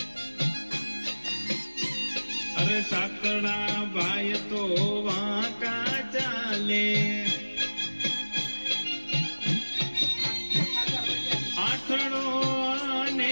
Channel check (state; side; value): inverted; both; correlation -1.00